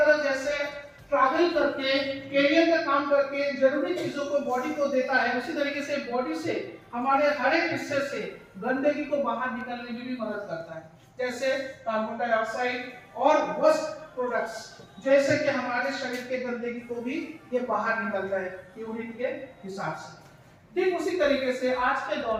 जैसे ट्रैवल करके कैरियर का काम करके जरूरी चीजों को बॉडी को देता है, उसी तरीके से बॉडी से हमारे हर एक हिस्से से गंदगी को बाहर निकलने में भी मदद करता है। जैसे कार्बन डाइऑक्साइड और वेस्ट प्रोडक्ट्स, जैसे कि हमारे शरीर के गंदगी को भी ये बाहर निकलता है यूरिन के हिसाब से। ठीक उसी तरीके से आज के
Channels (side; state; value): both; identical; correlation 1.00